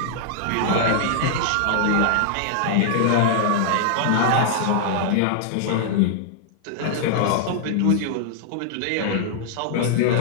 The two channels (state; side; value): different; both; correlation -0.01